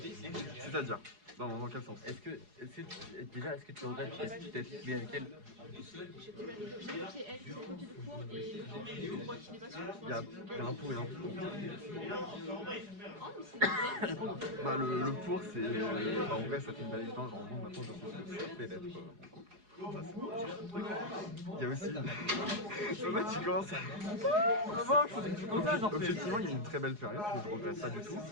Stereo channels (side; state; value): left; late; 4.8 ms